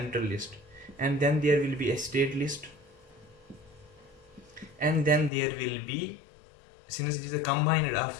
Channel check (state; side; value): drops out; right; at 5.3 s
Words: list, and then there will be a state list, and then there will be, since it is a combined of